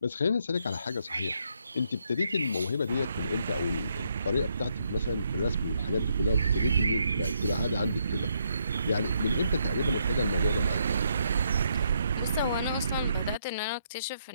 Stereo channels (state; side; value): inverted; both; correlation -0.75